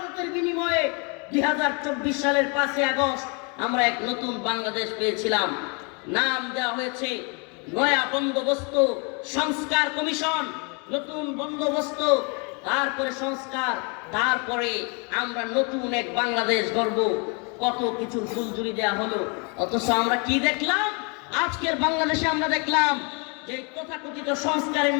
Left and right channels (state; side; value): quieter; right; 33.6 dB